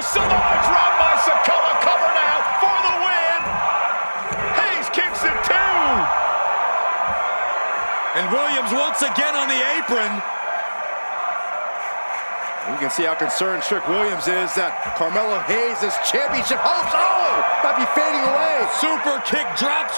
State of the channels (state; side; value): inverted; both; correlation -1.00